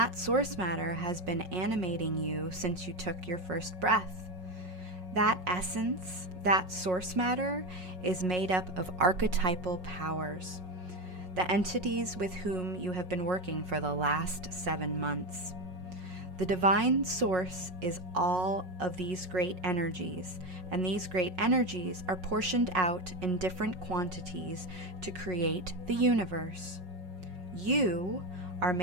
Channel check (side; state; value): left; late; 5.5 ms